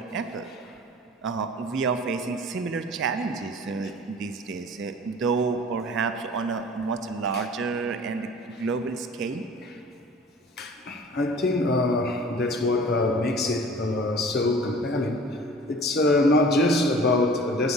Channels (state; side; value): normal; both; correlation 0.45